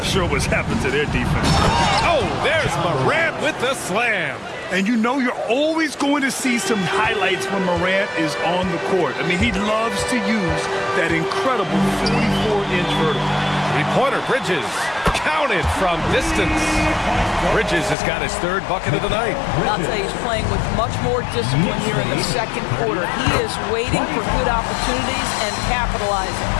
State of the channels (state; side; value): drops out; right; at 17.9 s